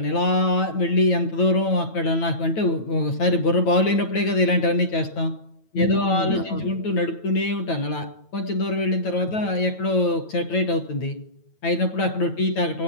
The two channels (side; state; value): right; late; 9.1 ms